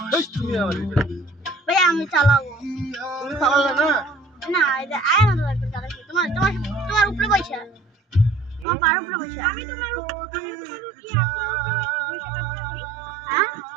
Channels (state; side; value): drops out; left; at 8.7 s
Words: ভাইয়া আমি চালাবো তুমি চালালে না না এটা আয় না লাগবে চালাচ্ছি তোমার তোমার তোমার উপরে বসে তোমার পার উপরে বসে আমি তোমার উপরে কি হ্যাঁ